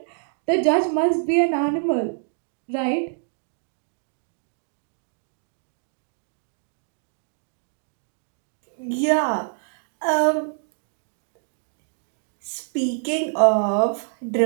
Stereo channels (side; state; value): left; silent; digital silence